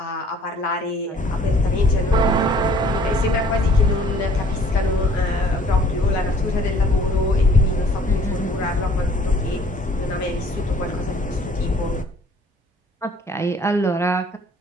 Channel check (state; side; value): normal; both; correlation 0.56